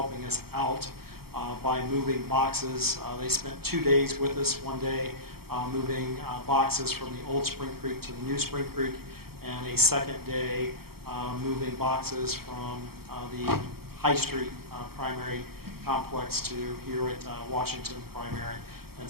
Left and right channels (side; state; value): left; late; 0.95 ms